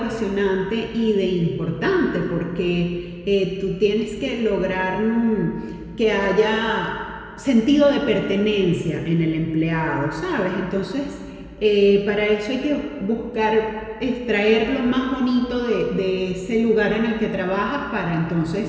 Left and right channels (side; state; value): both; identical; correlation 1.00